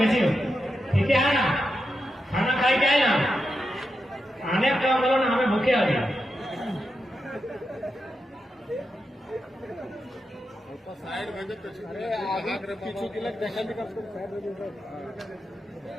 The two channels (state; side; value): normal; both; correlation 0.88